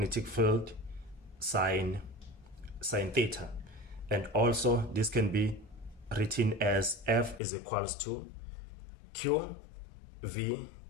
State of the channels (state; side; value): drops out; right; at 7.4 s